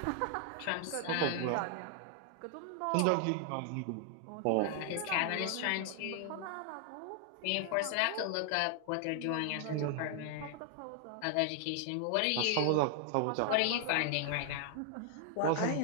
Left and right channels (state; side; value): different; both; correlation 0.00